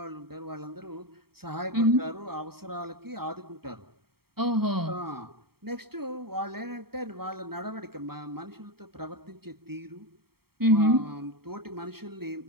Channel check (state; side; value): late; left; 0.95 ms